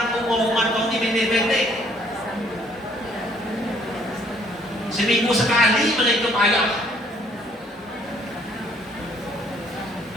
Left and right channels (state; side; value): normal; both; correlation 0.63